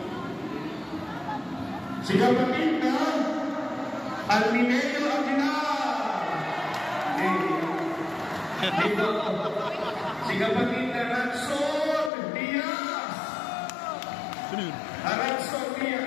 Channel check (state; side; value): drops out; right; at 12.1 s